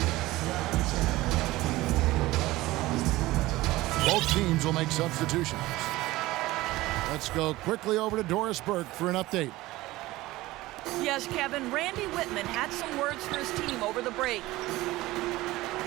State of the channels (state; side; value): quieter; left; 18.3 dB